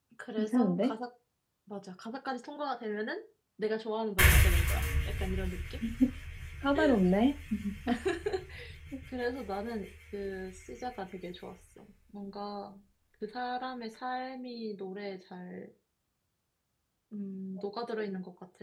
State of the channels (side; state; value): both; identical; correlation 1.00